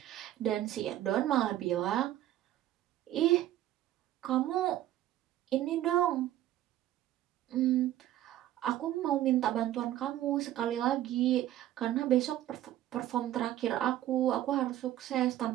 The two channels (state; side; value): quieter; left; 13.3 dB